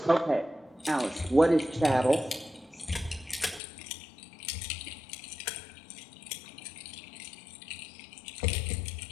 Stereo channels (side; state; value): right; drops out; at 3.6 s